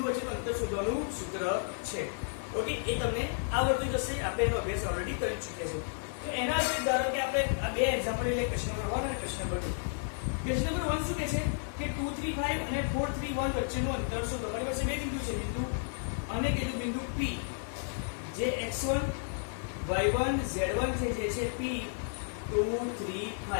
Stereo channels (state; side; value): silent; right; digital silence